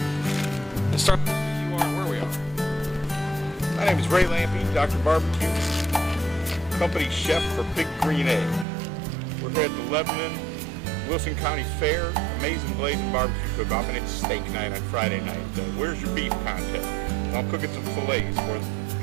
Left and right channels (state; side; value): drops out; left; at 8.7 s